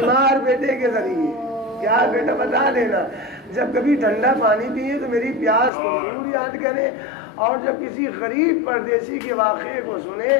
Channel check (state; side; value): drops out; right; at 5.7 s